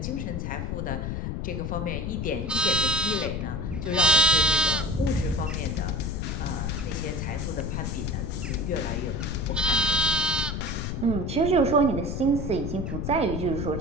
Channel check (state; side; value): noise; left; rumble, 3 dB below the sound